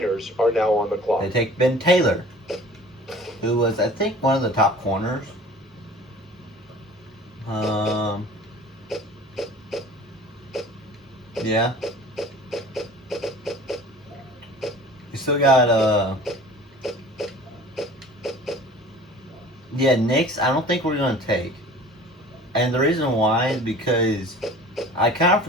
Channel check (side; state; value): both; normal; correlation 0.44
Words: are now on the clock. They take Ben Taylor, who was, I think, one of the top corners. Yeah. We still got, Knicks, I don't think we're going to take. And the reason why is because I kind of